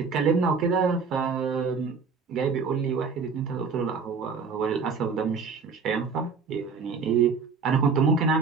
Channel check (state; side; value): quieter; left; 5.2 dB